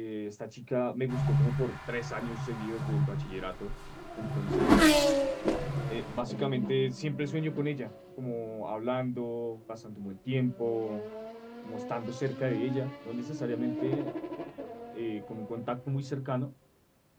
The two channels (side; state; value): both; identical; correlation 1.00